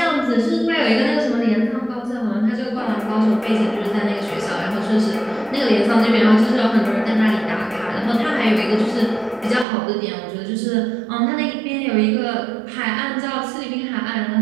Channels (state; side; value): drops out; left; at 9.7 s